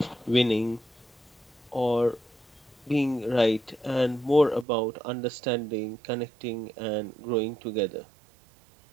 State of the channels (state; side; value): drops out; left; at 4.7 s